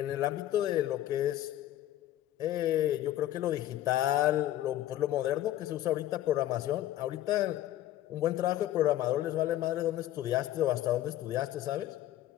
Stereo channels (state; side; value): quieter; right; 13.5 dB